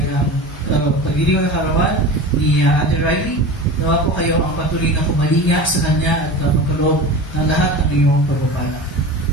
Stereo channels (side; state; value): both; normal; correlation 0.31